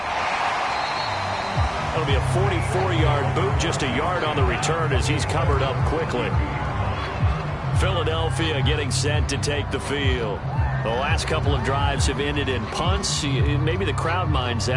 That'll be a 44-yard boot, just a yard on the return as he's covered up quickly. Philadelphia getting set to take the field. The last couple of drives have ended in punts. Maybe the crowd minds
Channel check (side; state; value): both; identical; correlation 1.00